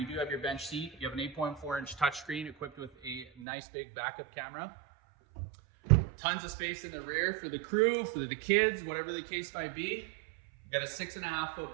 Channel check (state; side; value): drops out; left; at 3.5 s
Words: do have your bench seat. You have an 8.4-inch touchscreen equipped with a nice big backup camera. Tons of space in the rear for the crew, for the kids, whatever the case might be. You got a